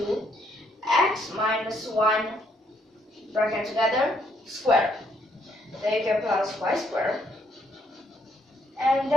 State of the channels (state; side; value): normal; both; correlation 0.71